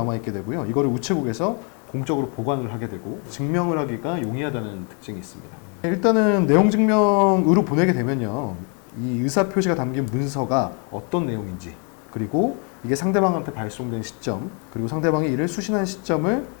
되고요. 이거를 우체국에서 공적으로 보관을 하게 되고 증명을 하기가 용이하다는 특징이 있습니다. 일단은 내용 증명으로 보내게 되면요, 이 의사표시가 담긴 문서가 어떤 내용인지, 그리고 이게 상대방한테 발송된 시점, 그리고 상대방이 이를 수신한 시점을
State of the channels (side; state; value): right; quieter; 37.5 dB